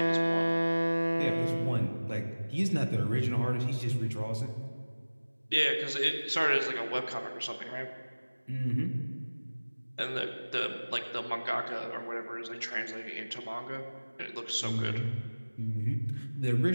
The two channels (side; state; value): both; inverted; correlation -1.00